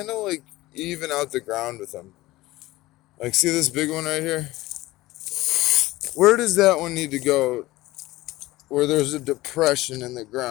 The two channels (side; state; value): right; quieter; 18.4 dB